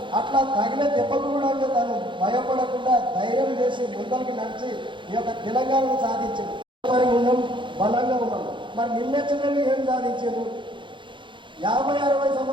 అట్లా తగిన దెబ్బకు కూడా తను భయపడకుండా ధైర్యం చేసి ముందరికి నడిచి ఈ యొక్క తెలంగాణను సాధించాడు. మరి ఉన్నాం, బలంగా ఉన్నాం. మరి నిన్నెచ్చని ఏం సాధించారు? 50-60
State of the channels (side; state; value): left; late; 0.23 ms